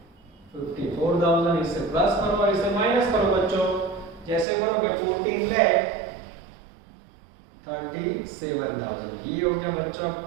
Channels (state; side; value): drops out; left; at 4.5 s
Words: 54,000। इसे प्लस करो और इसे माइनस करो बच्चों। जैसे करोगे 14 लाख 37,000। ये हो गया बच्चों